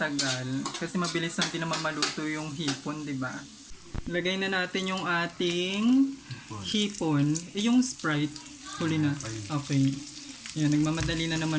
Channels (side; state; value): both; identical; correlation 1.00